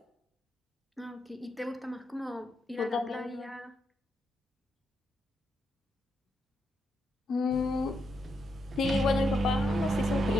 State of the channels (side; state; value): both; normal; correlation 0.81